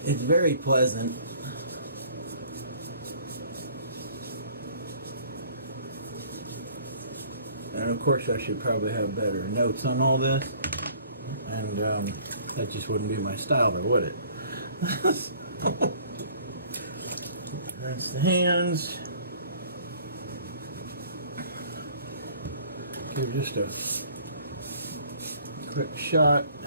It's very pleasant. And of course I should probably have better notes on all this. And that just wouldn't be my style though, would it? Rinse the hands. Give just a quick shot,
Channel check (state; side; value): inverted; both; correlation -0.54